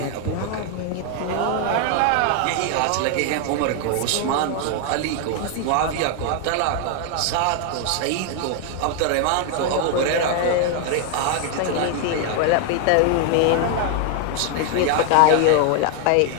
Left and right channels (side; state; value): both; different; correlation 0.00